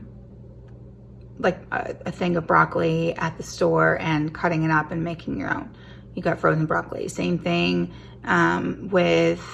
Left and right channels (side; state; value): both; identical; correlation 1.00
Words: like a thing of broccoli at the store and cutting it up and making your own. You got frozen broccoli. Same thing with